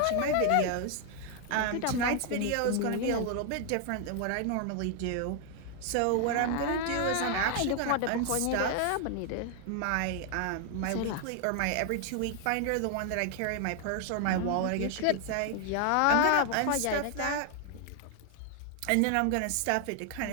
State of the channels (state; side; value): different; both; correlation 0.00